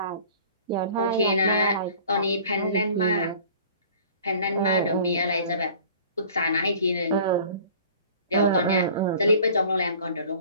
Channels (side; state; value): both; inverted; correlation -0.47